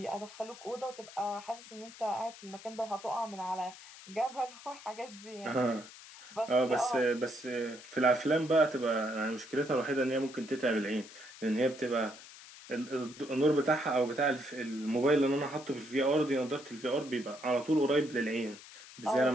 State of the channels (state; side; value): noise; left; hiss, 17 dB below the sound